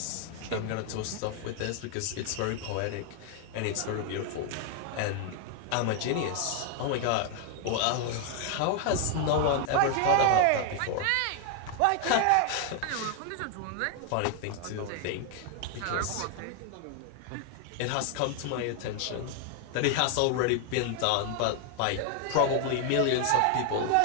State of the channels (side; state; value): both; different; correlation 0.00